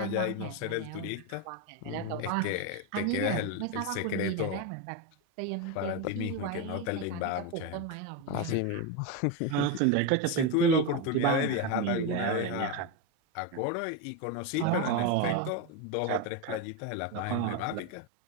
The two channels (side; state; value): both; different; correlation 0.04